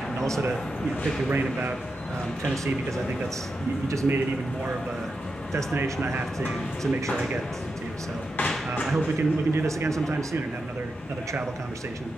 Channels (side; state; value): both; normal; correlation 0.88